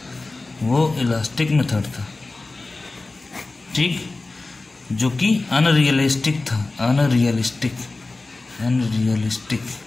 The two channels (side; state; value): right; quieter; 3.3 dB